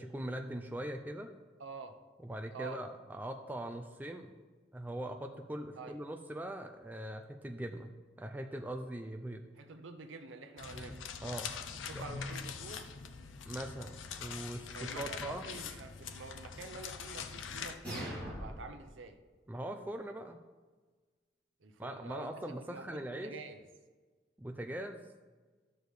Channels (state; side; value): normal; both; correlation 0.60